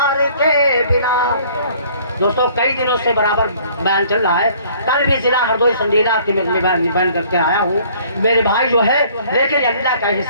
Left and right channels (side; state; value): both; inverted; correlation -0.56